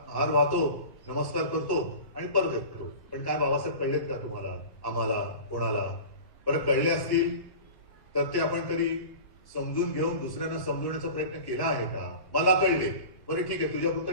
हार वाहतो, नमस्कार करतो आणि परत येतो. पण काय बाबासाहेब कळलेत का तुम्हाला, आम्हाला, कोणाला? बरं कळले असतील तर ते आपण कधी समजून घेऊन दुसऱ्यांना समजवण्याचा प्रयत्न केला आहे का? मला कळले, बरं ठीक आहे, तुझ्या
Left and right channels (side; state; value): right; late; 1.1 ms